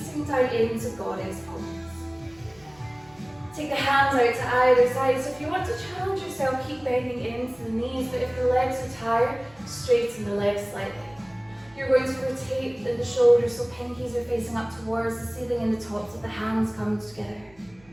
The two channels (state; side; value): noise; right; hum, 29 dB below the sound